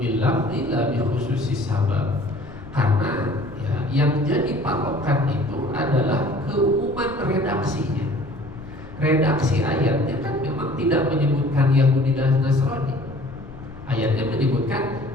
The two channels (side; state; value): left; noise; rumble, 16 dB below the sound